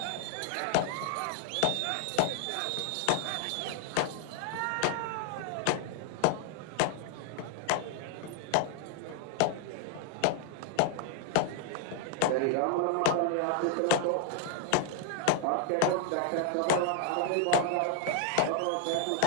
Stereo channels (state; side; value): different; both; correlation 0.00